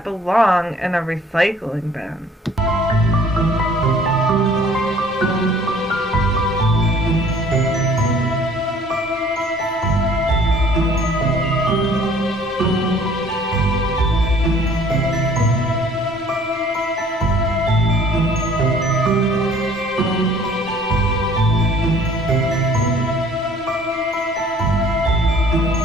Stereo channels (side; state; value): both; normal; correlation 0.55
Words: belong in a recycling bin?